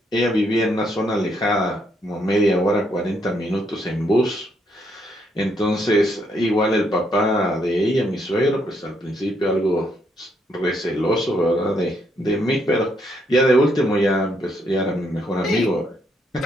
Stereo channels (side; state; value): both; normal; correlation 0.74